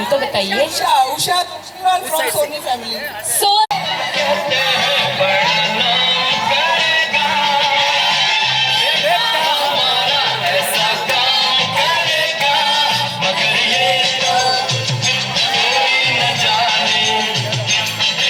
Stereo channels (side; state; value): both; identical; correlation 1.00